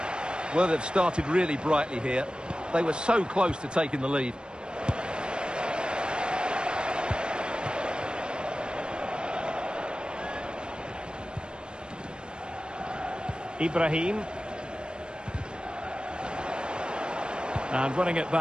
Well, they've started really brightly here. They were so close to taking the lead. Ibrahim. And running it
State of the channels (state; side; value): late; left; 0.052 ms